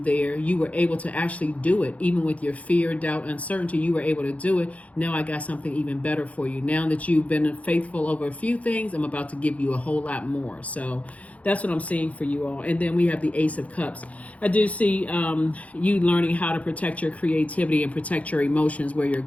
You were able to actually do it. Even with your fear, doubt, uncertainty, you were able to do it. Now I got something even better for you. Now that you've been faithful over a few things, I'm about to give you a whole lot more. So that's what I'm seeing for you all. And then we have the Ace of Cups. I do see you learning how to protect your creativity and protect your emotions where you're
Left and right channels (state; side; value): late; right; 0.067 ms